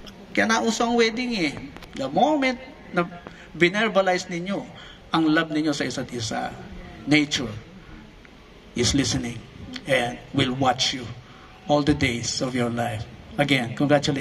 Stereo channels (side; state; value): both; identical; correlation 1.00